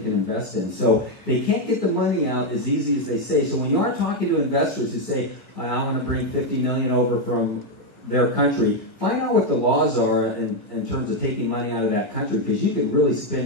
invest in. So they can't get the money out as easy as they say. So when you are talking to investors who say, I want to bring $50 million over from their country, find out what the laws are in terms of taking money out of that country, because you can really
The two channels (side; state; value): right; late; 1.3 ms